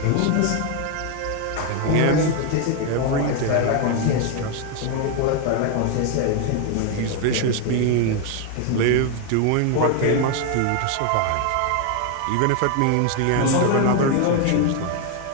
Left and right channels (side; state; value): both; different; correlation 0.01